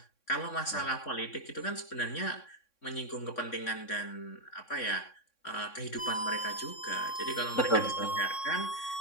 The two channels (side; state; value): right; late; 3.6 ms